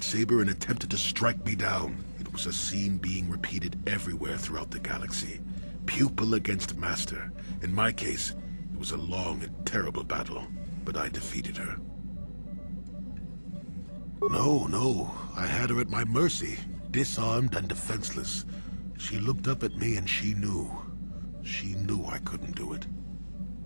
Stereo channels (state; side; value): inverted; both; correlation -1.00